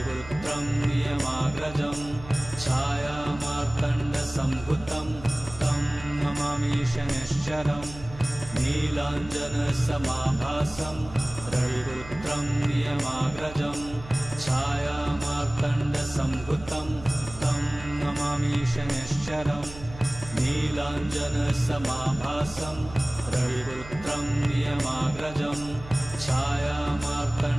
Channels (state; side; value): noise; right; hum, 15 dB below the sound